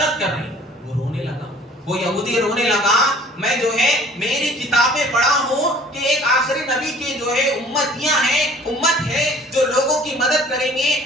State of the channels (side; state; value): both; normal; correlation 0.51